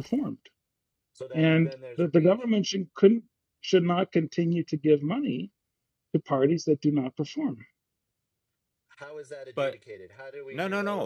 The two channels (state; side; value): identical; both; correlation 1.00